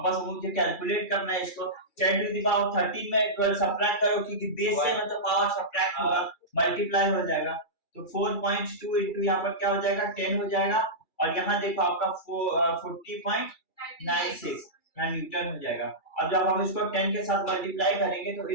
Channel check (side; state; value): right; late; 2.3 ms